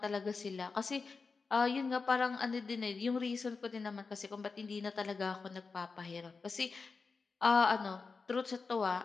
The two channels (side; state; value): right; quieter; 4.5 dB